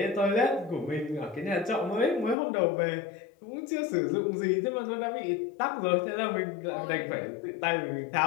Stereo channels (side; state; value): right; drops out; at 2.4 s